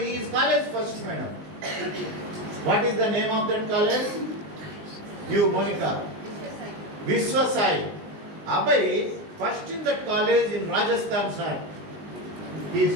is college first, madam. What is the name of that college? You, Monica. Vishwasai. Abhay, first in that college in Rajasthan, sir. He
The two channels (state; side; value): late; left; 19 ms